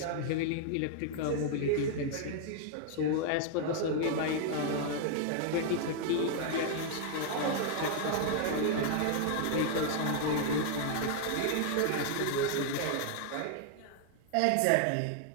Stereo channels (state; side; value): different; both; correlation 0.00